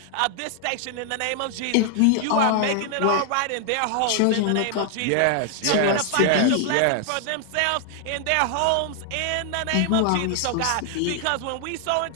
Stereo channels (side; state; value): both; different; correlation 0.00